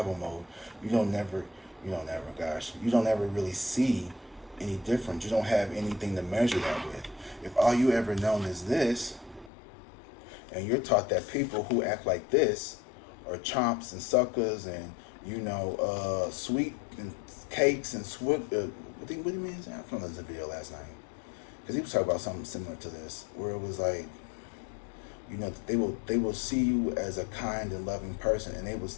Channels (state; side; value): drops out; right; at 9.5 s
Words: mode, you don't ever really see any difference. You don't have anything to measure that with. If all you ever known is this, and you're taught that people who act like this are chomps and suckers and, sweet and cakes and what do you mean? I found this video last night. Because he was talking about something similar to this, where it was like, they will see you as a kind and loving person, and they will,